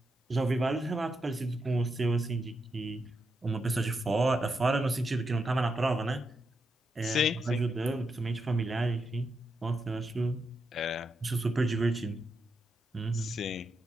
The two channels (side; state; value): both; normal; correlation 0.84